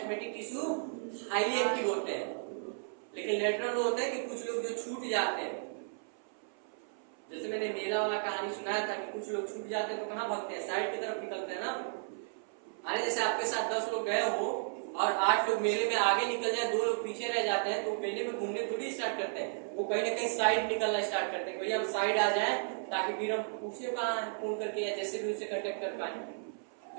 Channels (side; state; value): left; silent; 55 dB below the other